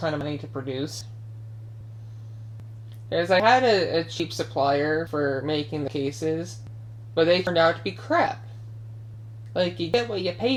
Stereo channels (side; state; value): both; identical; correlation 1.00